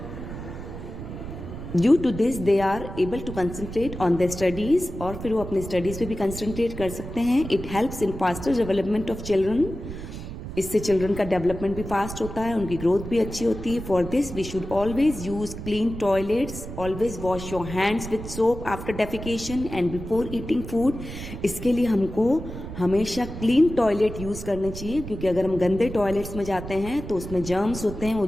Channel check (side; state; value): right; noise; rumble, 9 dB below the sound